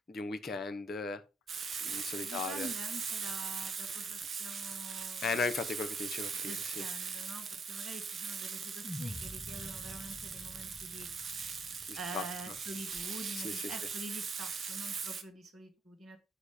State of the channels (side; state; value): both; normal; correlation 0.71